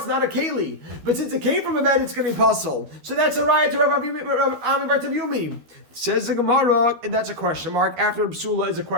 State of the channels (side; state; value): left; late; 12 ms